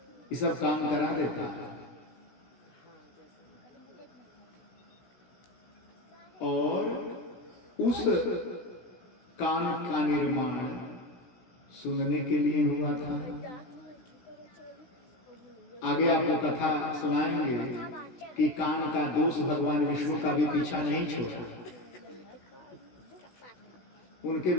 ये सब काम करा देता है। और उस कान का निर्माण सुनने के लिए हुआ था। आगे आपको कथा सुनाएंगे कि कान का दोष भगवान विष्णु का भी पीछा नहीं छोड़ा। उनके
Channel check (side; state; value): right; late; 16 ms